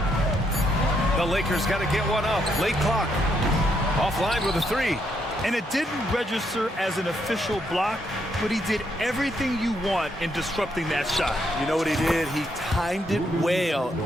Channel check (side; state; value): both; normal; correlation 0.76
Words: The Lakers got to get one up. Late clock. Offline with a 3. And it didn't register as an official block, but he did everything you want in disrupting that shot. You know what he did? He timed it well